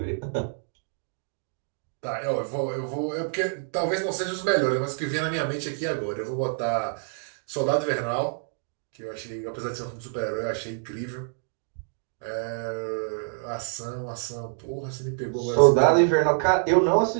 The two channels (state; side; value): silent; left; digital silence